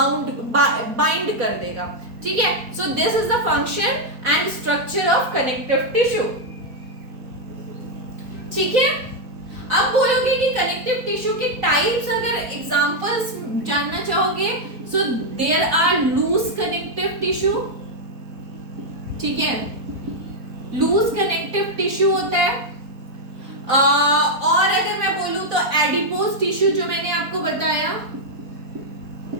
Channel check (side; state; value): left; late; 4.3 ms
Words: कर देगा, ठीक है। So this is the function and structure of connective tissue, ठीक है। अब बोलोगे कि कनेक्टिव टिश्यू के टाइप्स, अगर एग्जांपल्स जानना चाहोगे, so there are loose connective tissue, ठीक है, लूज कनेक्टिव टिश्यू होता है। और अगर मैं बोलूं तो एडिपोज टिश्यू जो मैंने आपको बताया,